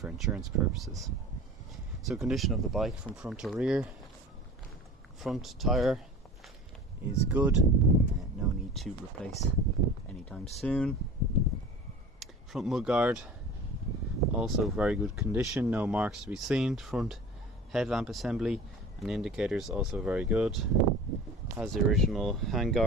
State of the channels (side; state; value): both; normal; correlation 0.40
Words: insurance purposes. So condition of the bike from front to rear: front tyre is good, no need to replace anytime soon. Front mudguard also very good condition, no marks to be seen. Front headlamp assembly and indicators also very good. Has the original